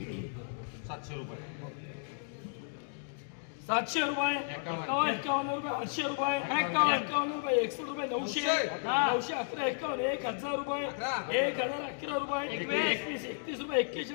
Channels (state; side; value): silent; right; digital silence